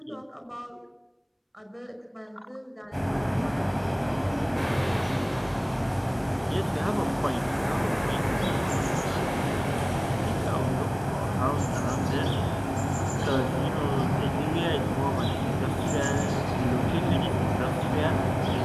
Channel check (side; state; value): both; identical; correlation 1.00